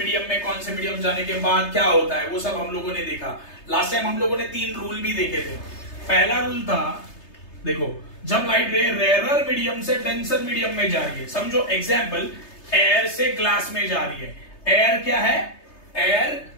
में कौन से मीडियम जाने के बाद क्या होता है, वो सब हम लोगों ने देखा। लास्ट टाइम हम लोगों ने 3 रूल भी देखे थे। पहला रूल था, देखो जब लाइट रे रेयरर मीडियम से डेंसर मीडियम में जा रही है, समझो एग्जाम्पल एयर से ग्लास में जा रही है। एयर क्या है, एयर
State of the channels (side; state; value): right; late; 3.3 ms